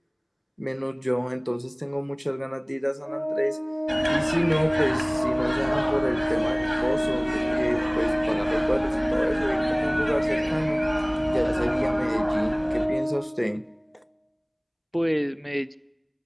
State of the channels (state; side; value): identical; both; correlation 1.00